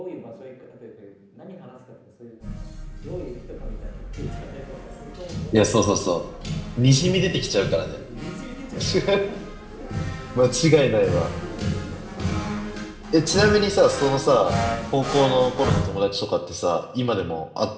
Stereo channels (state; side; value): identical; both; correlation 1.00